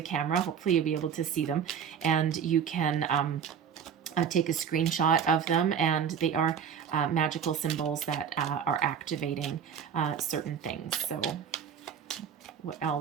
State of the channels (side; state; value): left; quieter; 7.6 dB